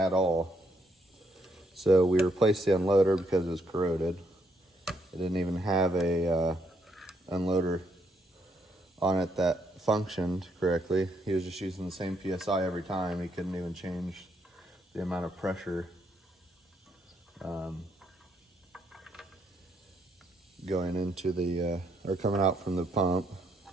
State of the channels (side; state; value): both; normal; correlation 0.74